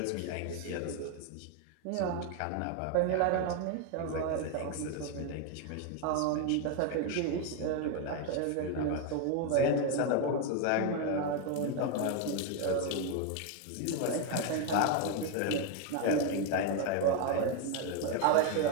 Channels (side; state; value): both; different; correlation 0.01